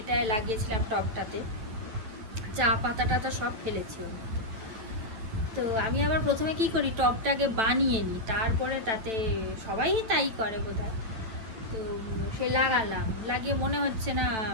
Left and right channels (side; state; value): left; late; 9.1 ms